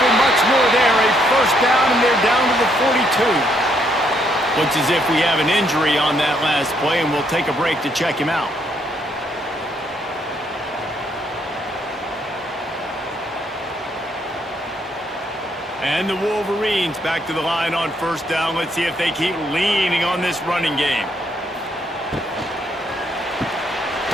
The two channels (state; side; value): normal; both; correlation 0.72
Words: much more there. A 1st down, and they're down to the 42. Looks as if we have an injury on that last play, and we'll take a break to check him out. And the Wolverines back to the line on 1st down. Let's see if they keep leaning on this running game.